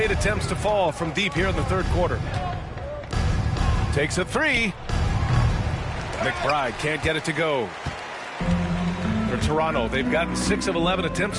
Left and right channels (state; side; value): identical; both; correlation 1.00